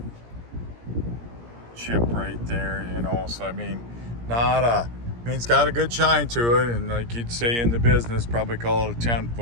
chip right there, so I mean, it's got a good shine to it, and like you'd say in the business, probably call it a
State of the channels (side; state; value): left; late; 17 ms